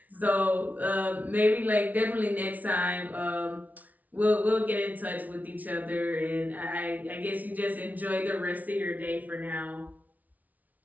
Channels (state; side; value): late; left; 0.075 ms